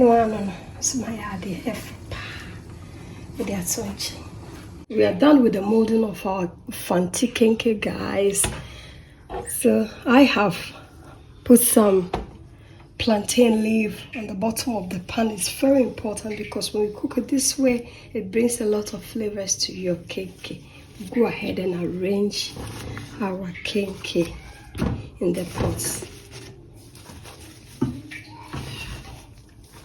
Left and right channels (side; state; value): both; identical; correlation 1.00